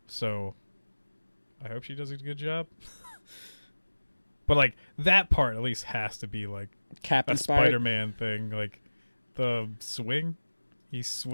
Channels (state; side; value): inverted; both; correlation -1.00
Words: So I hope she does a good job. But like that part at least has to be like Cap a inspired. Spider-Man thing. Like the swing, he